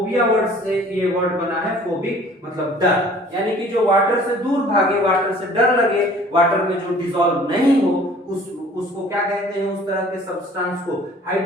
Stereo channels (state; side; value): normal; both; correlation 0.51